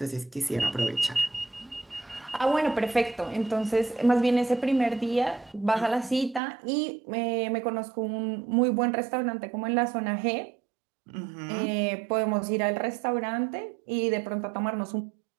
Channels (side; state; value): left; drops out; at 6.4 s